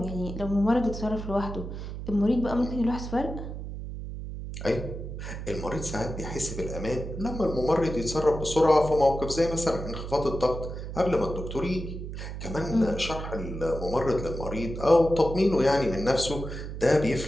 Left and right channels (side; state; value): right; noise; hum, 8 dB below the sound